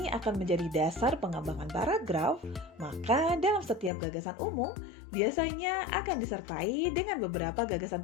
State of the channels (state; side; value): drops out; right; at 3.9 s